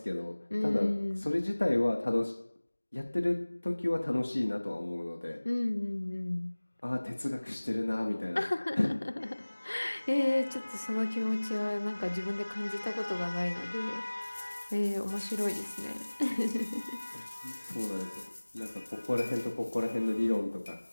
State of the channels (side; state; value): both; inverted; correlation -1.00